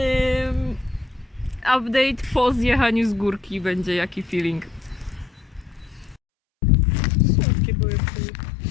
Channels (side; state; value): right; drops out; at 6.2 s